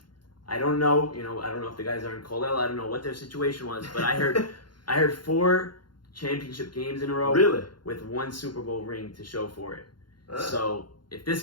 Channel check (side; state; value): right; late; 0.71 ms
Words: I don't know, I don't know if the guys are in Colell. I don't know what their situation was, but I heard 4 championship games in a row, really, with 1 Super Bowl ring to show for it. So if this